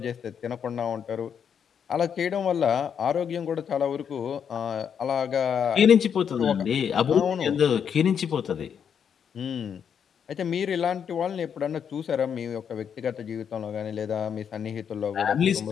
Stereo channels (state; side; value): quieter; right; 7.7 dB